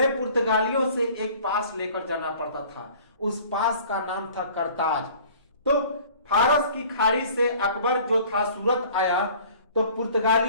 पुर्तगालियों से एक पास लेकर जाना पड़ता था। उस पास का नाम था करताज। तो फारस की खाड़ी से अकबर जो था सूरत आया, तो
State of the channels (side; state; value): both; inverted; correlation -0.49